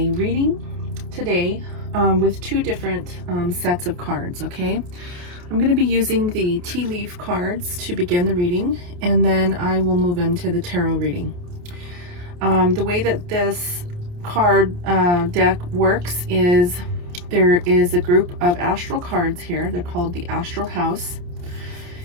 reading today with two different sets of cards, okay? I'm going to be using the tea leaf cards to begin the reading, and then I will move into the tarot reading. The way that this card deck works is there is a group of astral cards here. They're called the Astral House.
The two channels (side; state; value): left; late; 28 ms